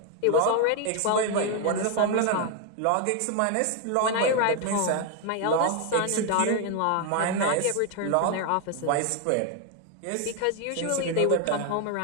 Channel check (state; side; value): different; both; correlation 0.01